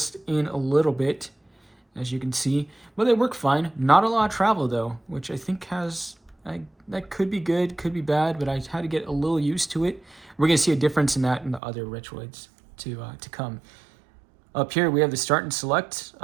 in a little bit, as you can see, but they work fine. Not a lot of travel though, which I think that could be good, could be bad, but I had to get a little used to it. We're gonna see a difference in that in the other Retroids to come. Up here we have the start and select.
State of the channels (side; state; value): left; drops out; at 11.6 s